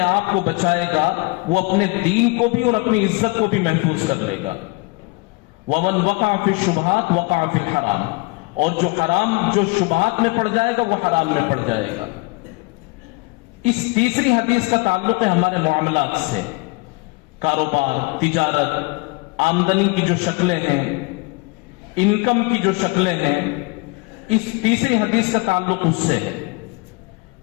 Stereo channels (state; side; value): quieter; right; 26.2 dB